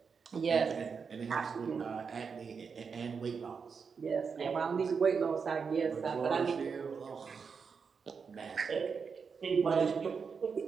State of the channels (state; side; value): quieter; left; 5.7 dB